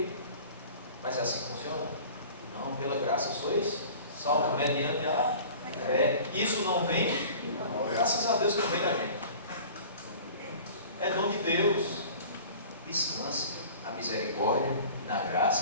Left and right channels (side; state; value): both; inverted; correlation -0.43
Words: Mas é assim que funciona? Não, pela graça sois salvos mediante a fé. Isso não vem, graças a Deus que não vem da gente. É dom de Deus. Descanse na misericórdia e na